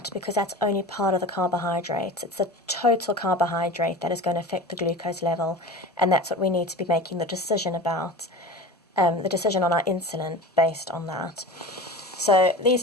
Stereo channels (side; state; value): both; normal; correlation 0.34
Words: because that's only part of the carbohydrates. It's the total carbohydrate that is going to affect the glucose level, and that's what we need to be making the decision about, the decision on our insulin based on that. So these